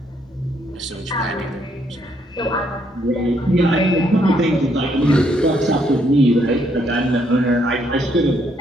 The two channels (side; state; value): both; normal; correlation 0.72